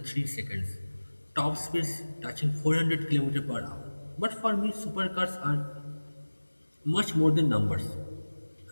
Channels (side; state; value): both; inverted; correlation -1.00